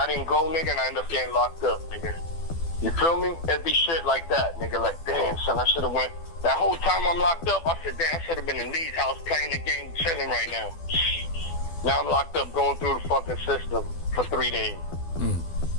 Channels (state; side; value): late; right; 12 ms